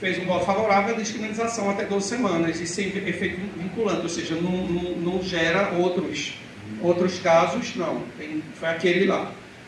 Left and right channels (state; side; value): identical; both; correlation 1.00